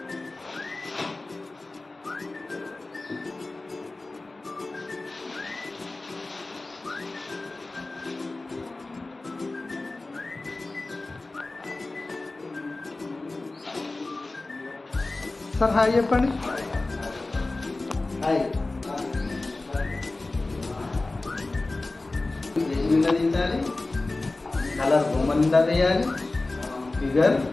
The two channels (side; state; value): right; quieter; 3.1 dB